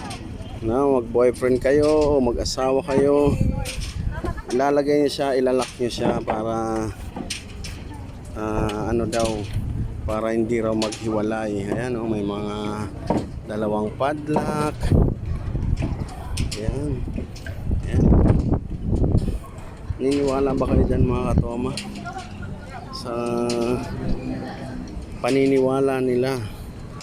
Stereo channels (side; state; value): both; identical; correlation 1.00